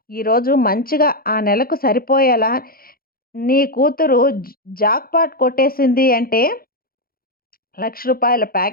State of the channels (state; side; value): late; right; 0.43 ms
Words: ఈరోజు మంచిగా ఆ నెలకు సరిపోయేలా నీ కూతురు జాక్‌పాట్ కొట్టేసింది అంటే రూ. 1,00,000